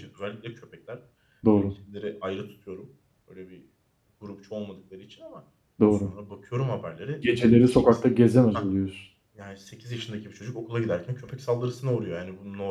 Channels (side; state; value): both; identical; correlation 1.00